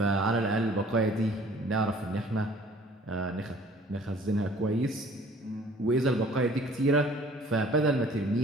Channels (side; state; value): both; normal; correlation 0.53